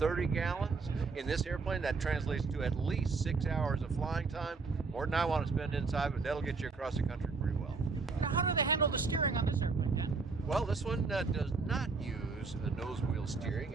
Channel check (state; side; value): quieter; left; 4.4 dB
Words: gallons. In this airplane, that translates to at least 6 hours of flying time. More than I want to spend inside, but that'll get you across the country pretty well. Now, how do they handle the steering on this airplane, Dan? Well, this one does not use a nose wheel steering.